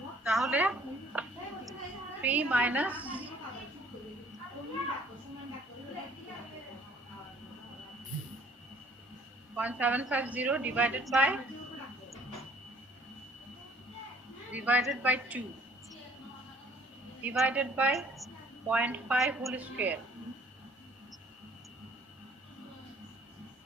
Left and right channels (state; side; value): normal; both; correlation 0.56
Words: তাহলে 3 minus 0.750 divided by 2 divided by 0.5 whole square,